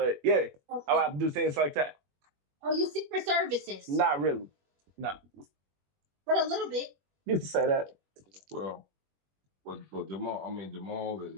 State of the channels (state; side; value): late; left; 21 ms